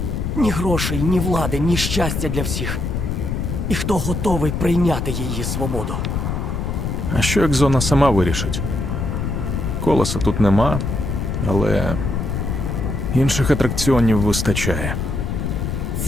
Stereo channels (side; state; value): left; noise; rumble, 2 dB below the sound